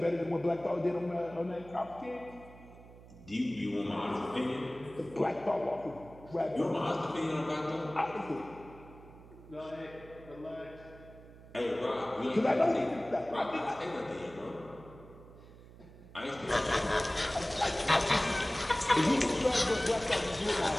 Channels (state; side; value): noise; right; hum, 19 dB below the sound